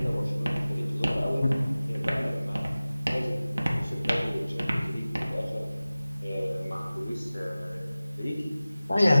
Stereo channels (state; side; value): inverted; both; correlation -0.97